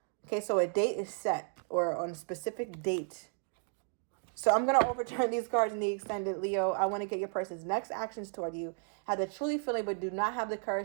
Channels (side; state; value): left; silent; 55 dB below the other